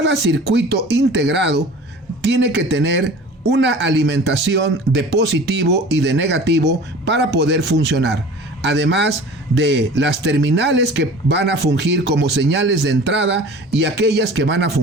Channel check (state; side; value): normal; both; correlation 0.42